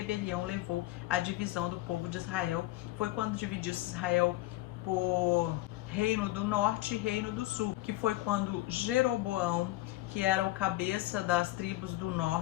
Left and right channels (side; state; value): right; quieter; 17.6 dB